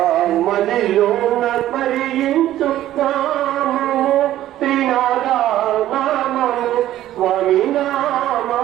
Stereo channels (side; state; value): left; quieter; 13.4 dB